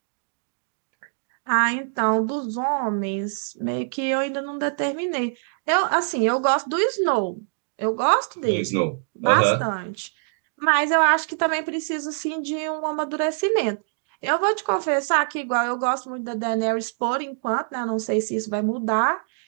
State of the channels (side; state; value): left; silent; digital silence